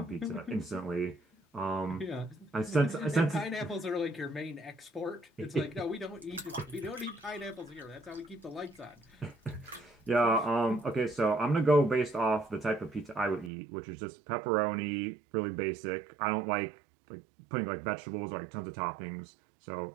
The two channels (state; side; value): drops out; left; at 13.5 s